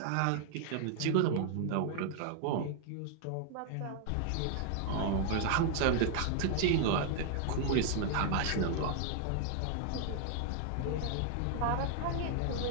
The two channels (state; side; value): different; both; correlation 0.00